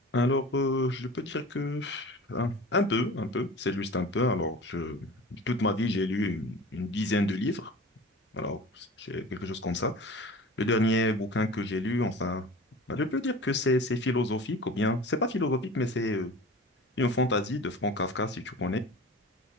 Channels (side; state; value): both; normal; correlation 0.38